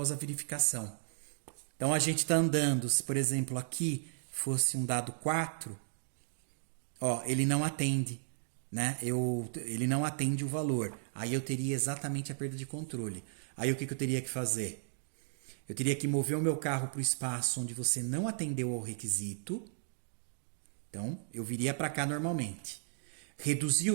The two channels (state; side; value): silent; left; digital silence